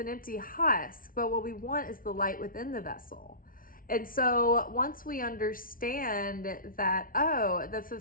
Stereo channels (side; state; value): right; late; 0.41 ms